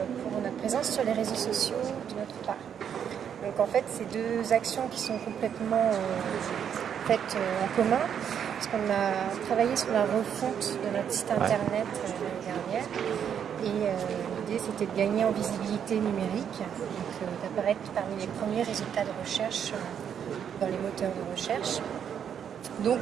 pour notre présence sur les réseaux sociaux d'une autre part. Donc en fait, c'est deux actions qui sont complètement faites en commun, parce qu'on a travaillé sur la refonte de notre site internet l'année dernière. Et l'idée, c'était de gagner en visibilité numérique, donc d'apparaître parmi les premiers résultats de recherche dans les moteurs de recherche. Donc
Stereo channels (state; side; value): quieter; left; 8.4 dB